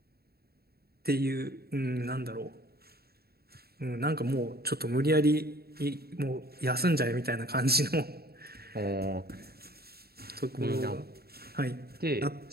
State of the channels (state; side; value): late; left; 0.45 ms